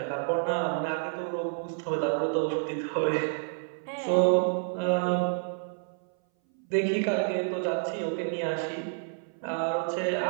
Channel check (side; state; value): left; silent; 58 dB below the other